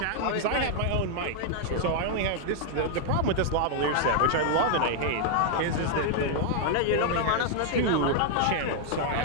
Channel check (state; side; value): different; both; correlation 0.00